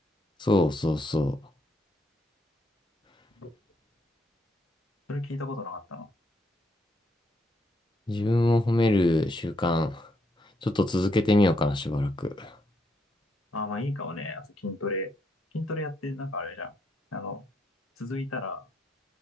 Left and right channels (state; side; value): normal; both; correlation 0.76